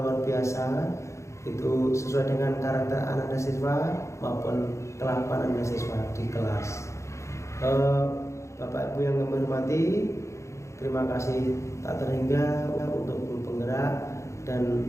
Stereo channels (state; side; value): late; right; 0.14 ms